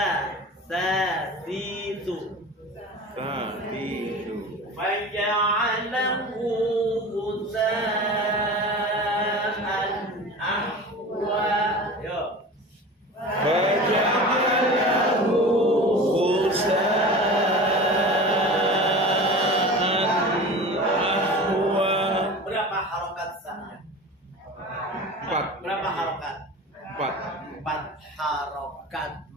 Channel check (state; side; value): normal; both; correlation 0.34